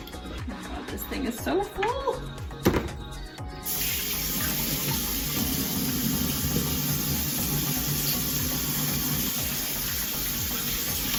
This thing is so full.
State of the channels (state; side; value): identical; both; correlation 1.00